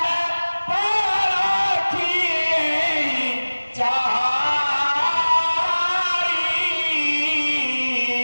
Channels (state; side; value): inverted; both; correlation -1.00